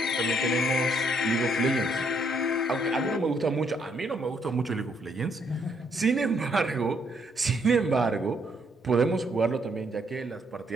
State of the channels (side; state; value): both; normal; correlation 0.71